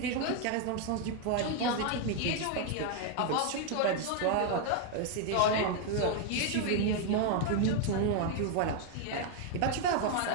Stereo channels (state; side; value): different; both; correlation 0.01